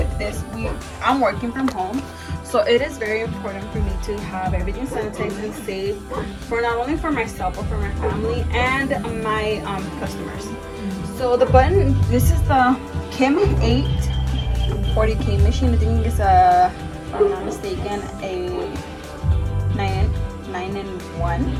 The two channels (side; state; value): both; identical; correlation 1.00